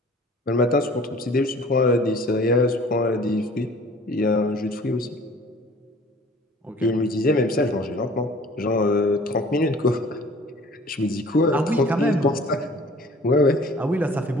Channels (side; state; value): both; normal; correlation 0.50